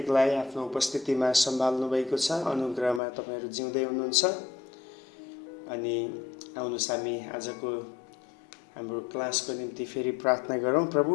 आफ्नो उपस्थितिमा सम्हाल्नु भएको छ, अनुग्रहमा तपाईहरू जिउँदै हुनुहुन्छ। अनि आउनुहोस् हामी आजको हाम्रो क्लासको निम्ति फेरि प्रार्थना गरौँ।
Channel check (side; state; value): right; drops out; at 3.0 s